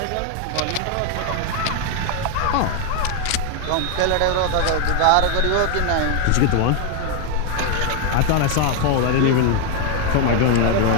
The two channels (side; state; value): both; different; correlation 0.01